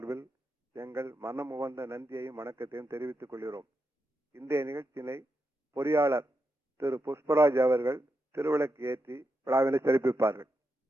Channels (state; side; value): normal; both; correlation 0.86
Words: எங்கள் மனம் உவந்த நன்றியையும் வணக்கத்தையும் தெரிவித்துக் கொள்கிறோம். இன்றைய நிகழ்ச்சியினை பொறியாளர் திரு புஷ்பராஜ் அவர்கள் திருவிளக்கு ஏற்றி விழாவினை சிறப்பிப்பார்கள்.